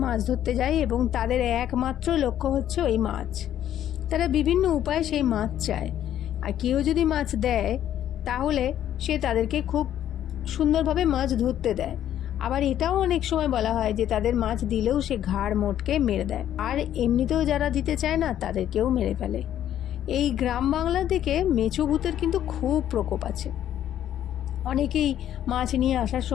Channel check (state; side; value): quieter; right; 11.1 dB